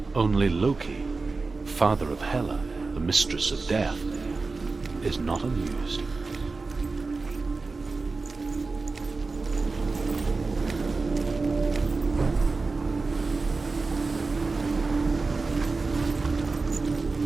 Only Loki, father of Hela, the mistress of death, is not amused.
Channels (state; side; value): quieter; left; 3.9 dB